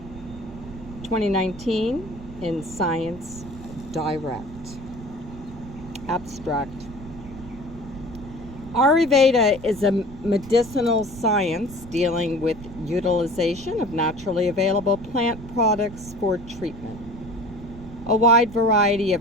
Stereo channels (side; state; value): right; noise; rumble, 15 dB below the sound